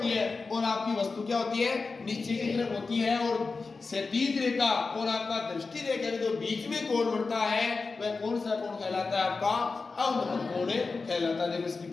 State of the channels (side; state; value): right; quieter; 4.2 dB